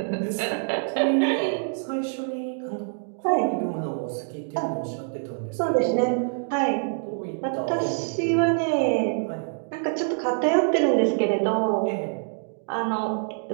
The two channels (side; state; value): left; silent; digital silence